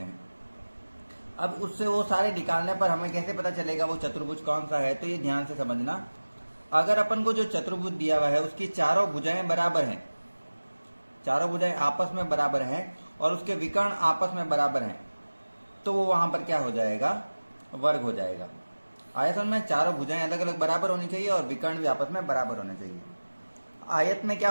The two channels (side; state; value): both; inverted; correlation -1.00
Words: हैं। अब उससे वो सारे निकालने पर हमें कैसे पता चलेगा वो चतुर्भुज कौन सा है, तो ये ध्यान से समझना। अगर अपन को जो चतुर्भुज दिया हुआ है उसकी चारों भुजाएं बराबर हैं, चारों भुजाएं आपस में बराबर हैं और उसके विकर्ण आपस में बराबर हैं, तो वो वहां पर क्या हो जाएगा? वर्ग हो जाएगा। आयतन में चारों भुजाएं अलग अलग बराबर होनी चाहिए और विकर्ण भी आपस में बराबर होने चाहिए। आयत में क्या